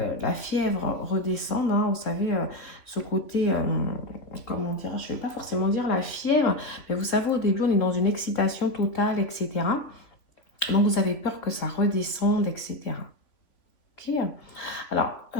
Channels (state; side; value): late; right; 3.7 ms